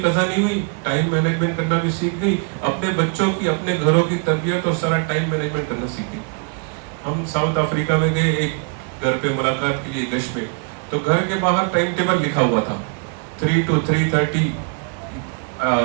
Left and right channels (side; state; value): left; quieter; 39.3 dB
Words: قضا نہیں ہوئی, ٹائم مینجمنٹ کرنا بھی سیکھ گئی, اپنے بچوں کی, اپنے گھروں کی تربیت اور سارا ٹائم مینجمنٹ کرنا سیکھ گئی. ہم ساؤتھ افریقہ میں گئے ایک گھر پہ ملاقات کے لیے گشت میں, تو گھر کے باہر ٹائم ٹیبل لکھا ہوا تھا 3 to 3:30